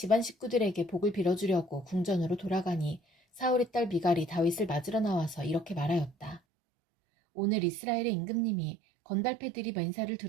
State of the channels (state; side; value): drops out; left; at 6.4 s